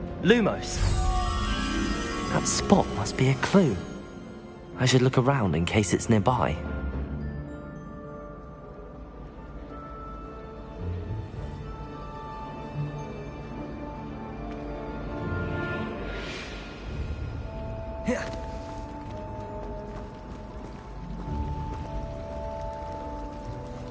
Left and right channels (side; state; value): both; identical; correlation 1.00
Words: Lumos! That spot must be a clue. I should look around in case it's nearby.